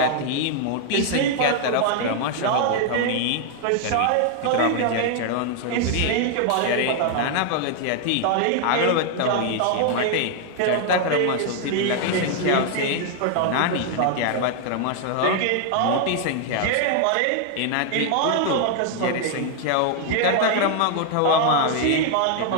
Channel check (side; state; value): both; different; correlation 0.00